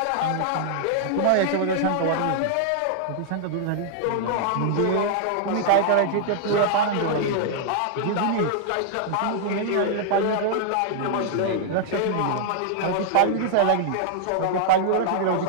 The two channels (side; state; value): both; different; correlation -0.01